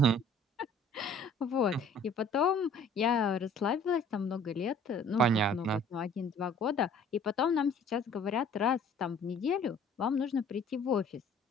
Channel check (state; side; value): normal; both; correlation 0.53